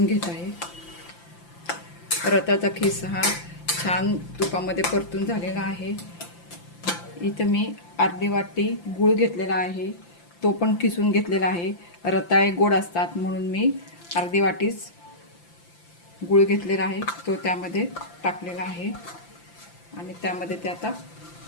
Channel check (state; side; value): late; right; 5.8 ms